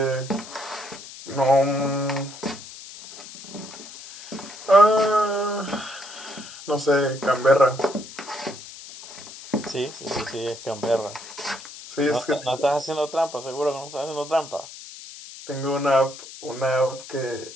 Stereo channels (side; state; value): left; noise; hiss, 15 dB below the sound